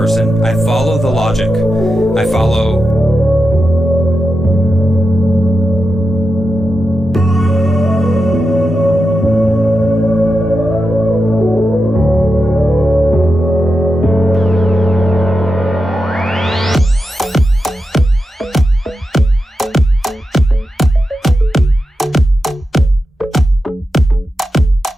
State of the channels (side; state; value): both; normal; correlation 0.89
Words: I follow the logic. I follow...